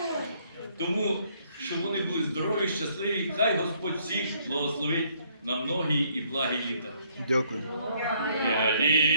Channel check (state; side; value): inverted; both; correlation -0.66